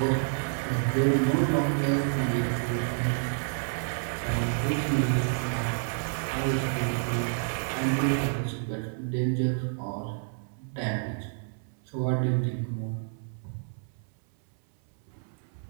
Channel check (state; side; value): silent; left; 58 dB below the other